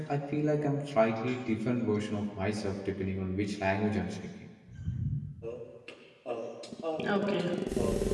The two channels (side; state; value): both; identical; correlation 1.00